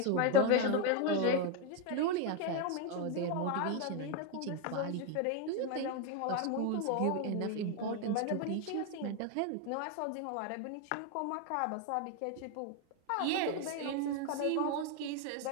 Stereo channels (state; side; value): different; both; correlation 0.01